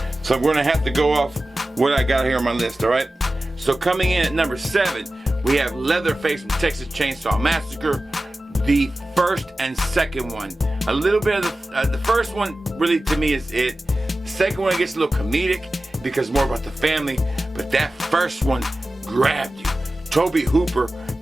so I'm gonna have to go off what I got here on my list, all right? So coming in at number 7, we have Leatherface from Texas Chainsaw Massacre, the first and second one. A little bit of the first one really to me is it. The second one gets a little comedic because more about the family, but that first one grabbed you. Toby Hooper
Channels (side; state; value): both; normal; correlation 0.95